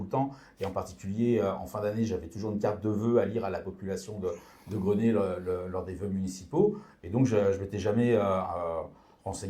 le temps, et en particulier en fin d'année, j'avais toujours une carte de vœux à lire à la population de Grenay lors des vœux municipaux. Et donc, je ne m'étais jamais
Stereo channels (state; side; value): identical; both; correlation 1.00